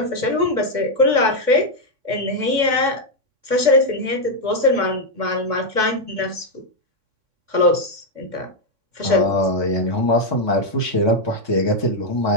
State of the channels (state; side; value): late; left; 3.6 ms